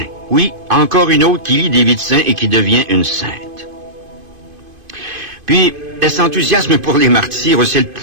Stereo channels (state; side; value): late; left; 2.5 ms